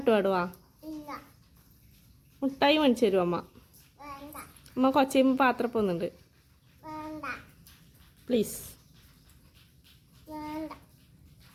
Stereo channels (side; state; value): both; identical; correlation 1.00